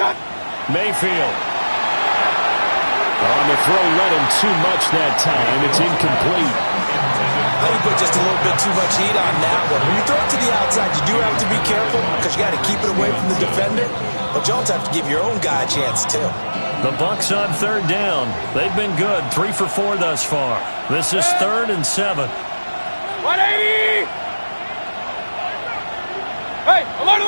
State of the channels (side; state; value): both; inverted; correlation -1.00